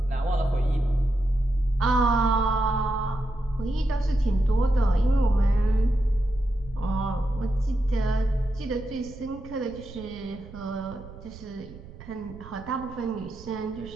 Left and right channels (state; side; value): noise; right; rumble, 17 dB below the sound